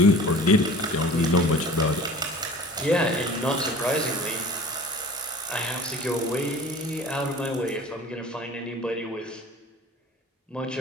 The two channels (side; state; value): both; normal; correlation 0.43